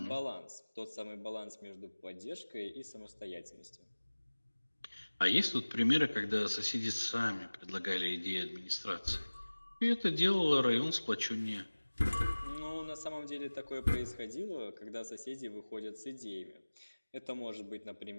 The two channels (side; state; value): both; inverted; correlation -1.00